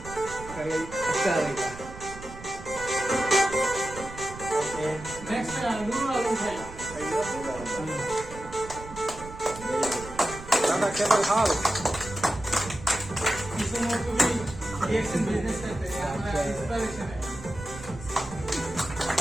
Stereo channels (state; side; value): noise; right; rumble, 14 dB below the sound